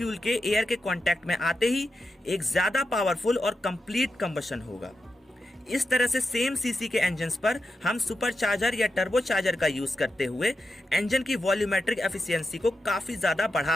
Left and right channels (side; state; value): both; normal; correlation 0.88